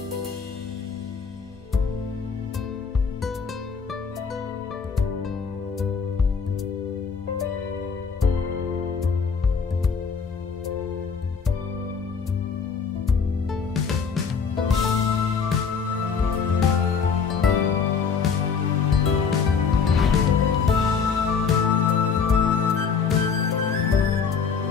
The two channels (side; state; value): right; quieter; 5.8 dB